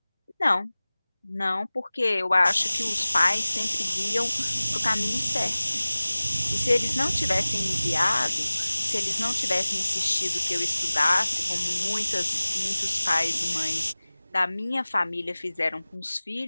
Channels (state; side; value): inverted; both; correlation -0.99